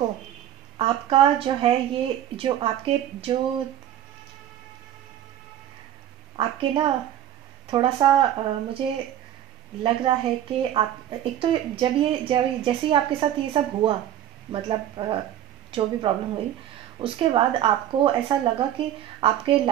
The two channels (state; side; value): quieter; left; 11.4 dB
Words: आपका जो है ये जो आपके जो आपके ना थोड़ा सा मुझे लग रहा है कि आप एक तो जब जैसे ही आपके साथ ये सब हुआ, मतलब जो भी प्रॉब्लम हुई, उसके बाद आपको ऐसा लगा कि आपके